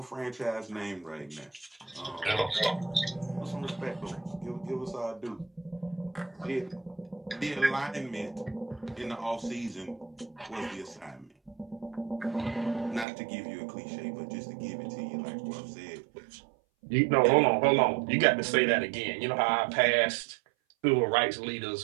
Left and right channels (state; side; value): drops out; left; at 13.1 s